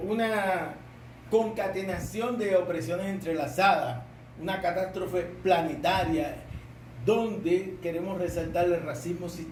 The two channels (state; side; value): identical; both; correlation 1.00